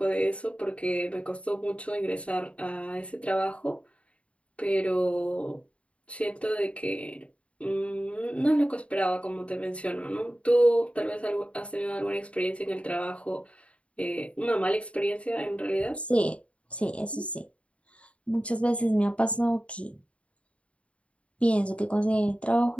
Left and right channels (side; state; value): right; late; 0.062 ms